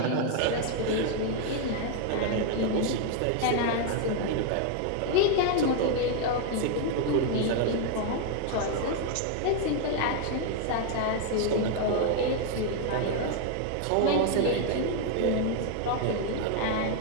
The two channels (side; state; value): both; different; correlation 0.00